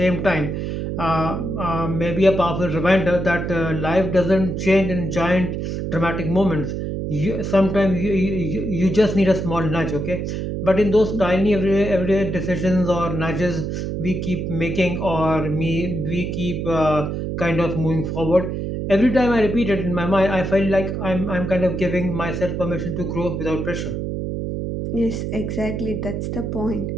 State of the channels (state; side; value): noise; right; hum, 3 dB below the sound